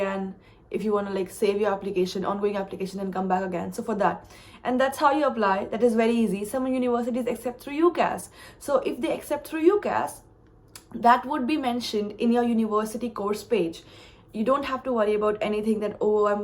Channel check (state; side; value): identical; both; correlation 1.00